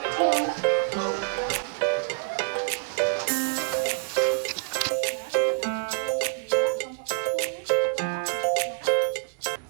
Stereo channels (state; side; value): silent; left; digital silence